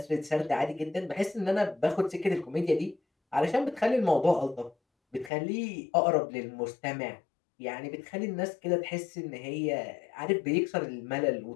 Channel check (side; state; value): right; drops out; at 5.3 s